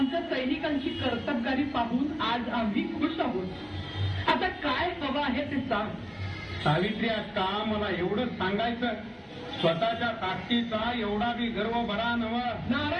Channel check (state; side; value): identical; both; correlation 1.00